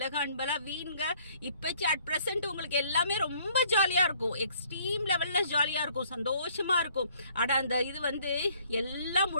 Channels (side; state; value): both; inverted; correlation -0.61